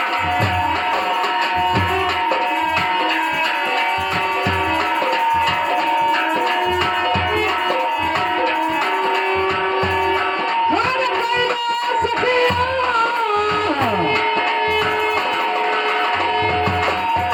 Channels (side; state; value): both; identical; correlation 1.00